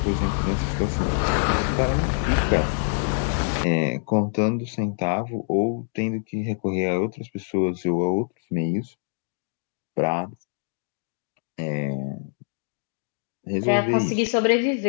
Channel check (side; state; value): right; silent; digital silence